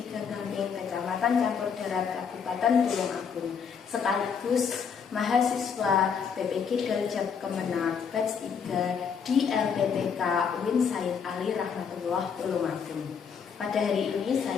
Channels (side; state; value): right; quieter; 6.6 dB